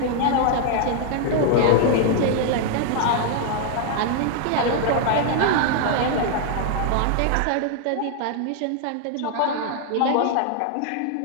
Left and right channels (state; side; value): different; both; correlation 0.00